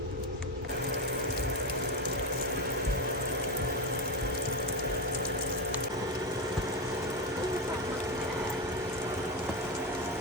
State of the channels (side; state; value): both; normal; correlation 0.13